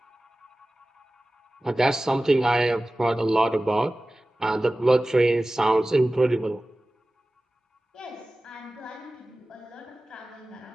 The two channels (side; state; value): both; normal; correlation 0.96